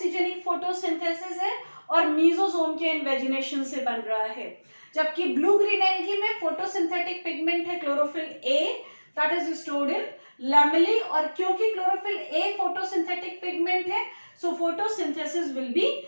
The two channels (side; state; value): both; inverted; correlation -1.00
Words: photosynthesis है, और मीजोसोम के इन्वेजिनेशन से बन रहा है। जबकि ब्लू ग्रीन एल्गी में फोटोसिंथेटिक पिगमेंट है chlorophyll A that is stored in lamellae, और क्योंकि क्लोरोफिल ए फोटोसिंथेटिक पिगमेंट है so photosynthesis will be